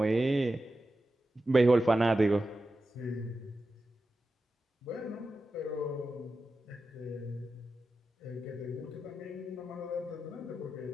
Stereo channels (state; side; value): normal; both; correlation 0.92